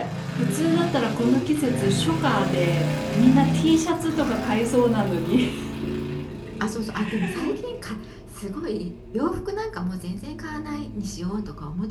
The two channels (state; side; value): identical; both; correlation 1.00